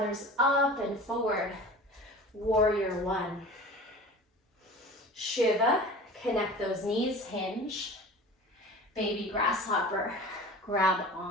up and forward, warrior 1. Shiva, connect those knees, hinge. Baby grasshopper, grab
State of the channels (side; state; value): both; normal; correlation 0.38